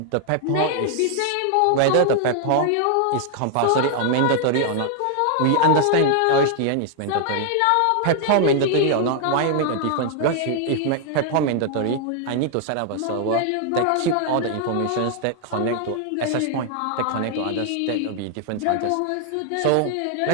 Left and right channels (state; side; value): different; both; correlation 0.00